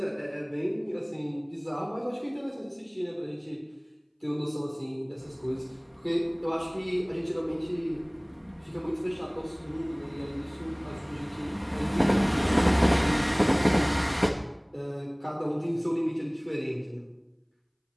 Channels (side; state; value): both; identical; correlation 1.00